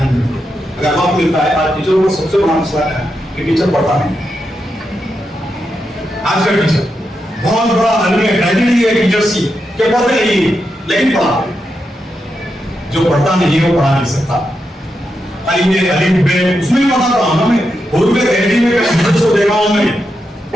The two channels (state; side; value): normal; both; correlation 0.86